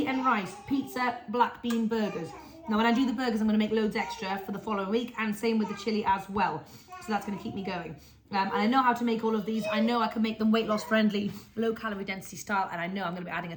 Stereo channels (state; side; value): identical; both; correlation 1.00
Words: and rice, pizza, black bean burgers. Now when I do the burgers, I'm going to make loads extra for the following week, and same with the chili as well. So that's going to keep me going. And I know how to make all of these. I know I can make them weight loss friendly, low calorie density style, and I know I'm going to be adding